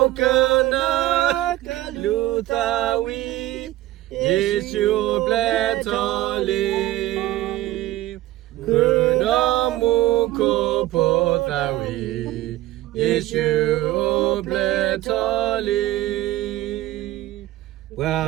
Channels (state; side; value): quieter; left; 15.9 dB